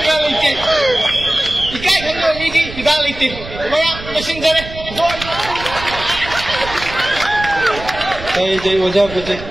lagi? Ikai kan midi tidak lagi. Maya mesin jere. Jai wajah putih.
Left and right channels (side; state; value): right; noise; rumble, 12 dB below the sound